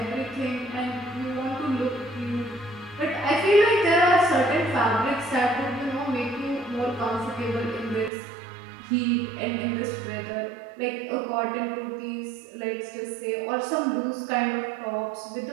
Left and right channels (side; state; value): left; drops out; at 8.1 s